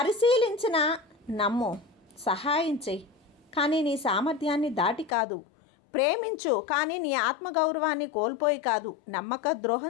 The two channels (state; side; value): drops out; right; at 5.1 s